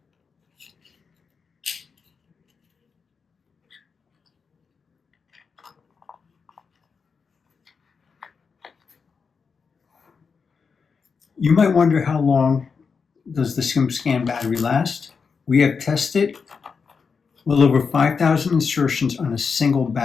You might wonder, how long does the Skim Scan battery last? We have tested well over 5,000 insertions on a single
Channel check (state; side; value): quieter; right; 5.5 dB